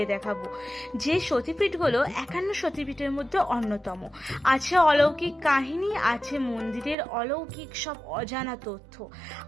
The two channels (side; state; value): left; drops out; at 7.0 s